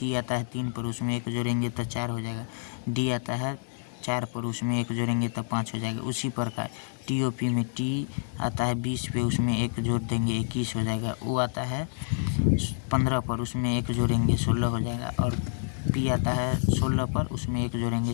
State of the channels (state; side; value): silent; right; 59 dB below the other